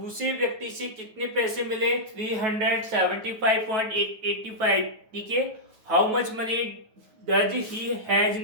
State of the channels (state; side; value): late; left; 9.2 ms